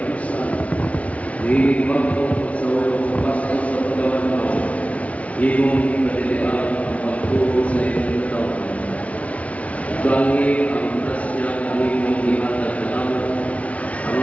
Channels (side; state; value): right; late; 0.066 ms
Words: dinig magpong sa ulong sa pasto sa pagawad mo, imong kadilian ang pagturo sa iyong taon. Gangi ang grasya kami mong ihatag na naman, ang